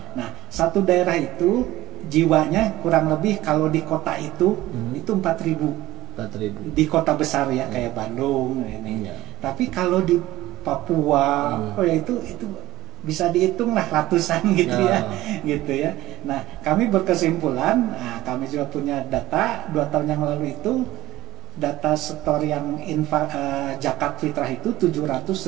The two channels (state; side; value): quieter; left; 16.8 dB